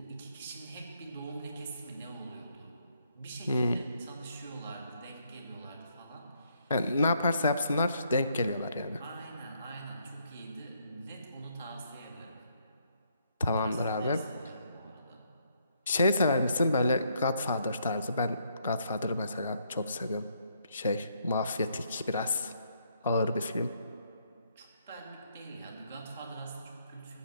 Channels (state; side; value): inverted; both; correlation -0.72